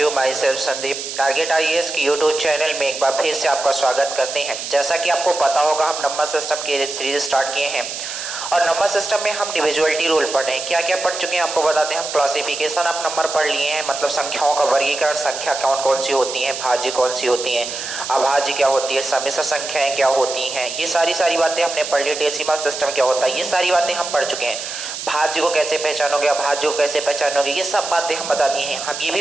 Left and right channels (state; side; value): noise; right; hiss, 7 dB below the sound